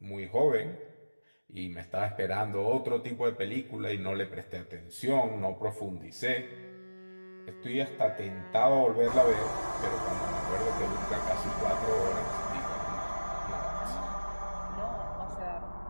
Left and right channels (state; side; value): inverted; both; correlation -1.00